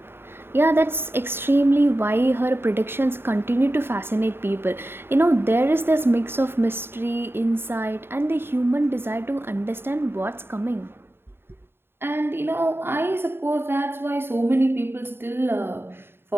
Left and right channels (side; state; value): left; late; 0.11 ms